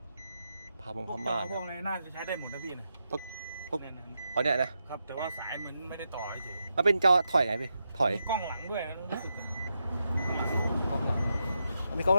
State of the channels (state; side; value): inverted; both; correlation -0.85